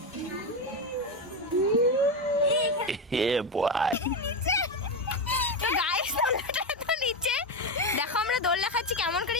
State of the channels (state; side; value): normal; both; correlation 0.12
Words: ये बॉय তো গাইস দোলনাটা এত নিচে। দেখো আমরা দোলনা খাচ্ছি কেমন করে।